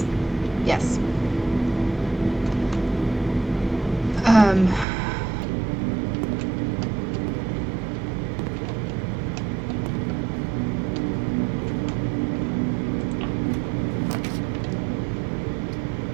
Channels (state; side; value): drops out; left; at 4.9 s